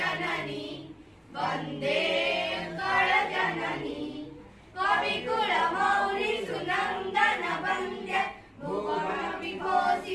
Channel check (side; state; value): both; identical; correlation 1.00